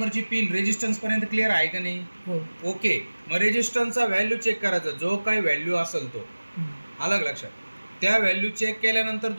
पिन रेजिस्टन्स पर्यंत क्लिअर आहे का नाही? ओके. मग रेजिस्टन्सचा व्हॅल्यू चेक करायचा, जो काही व्हॅल्यू असेल तो. अलग लक्षात. त्या व्हॅल्यू चेक केल्यानंतर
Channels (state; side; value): inverted; both; correlation -1.00